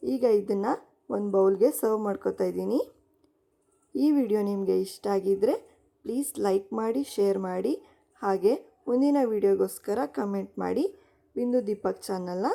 ಈಗ ಇದನ್ನು ಒಂದು ಬೌಲ್ಗೆ ಸರ್ವ್ ಮಾಡ್ಕೋತಾ ಇದ್ದೀನಿ. ಈ ವಿಡಿಯೋ ನಿಮಗೆ ಇಷ್ಟ ಆಗಿದ್ದರೆ ಪ್ಲೀಸ್ ಲೈಕ್ ಮಾಡಿ, ಶೇರ್ ಮಾಡಿ, ಹಾಗೆ ಮುಂದಿನ ವಿಡಿಯೋಗೋಸ್ಕರ ಕಮೆಂಟ್ ಮಾಡಿ. ಬಿಂದು ದೀಪಕ್ ಚಾನಲ್ನ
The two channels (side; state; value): both; identical; correlation 1.00